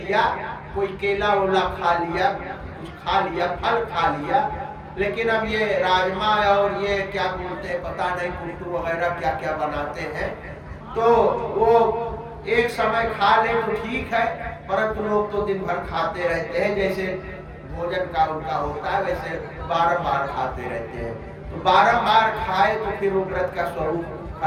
कोई केला ओला खा लिया, कुछ खा लिया, फल खा लिया, लेकिन अब ये राजमा और ये क्या बोलते हैं पता नहीं, कुट्टू वगैरह क्या क्या बनाते हैं, तो वो एक समय खा ले तो ठीक है, परंतु लोग तो दिन भर खाते रहते हैं, जैसे भोजन का उनका होता है वैसे बारंबार खाते रहते हैं। तो बारंबार खाए तो फिर वो व्रत का स्वरूप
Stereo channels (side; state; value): both; identical; correlation 1.00